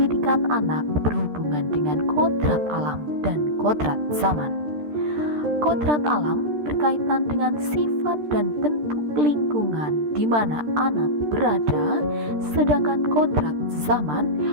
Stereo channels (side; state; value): left; late; 13 ms